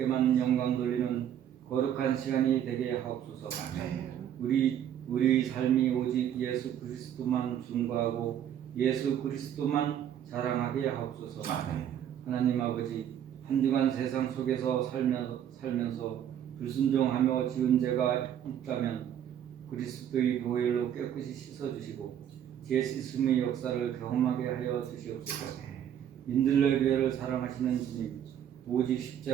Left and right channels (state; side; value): quieter; left; 10.0 dB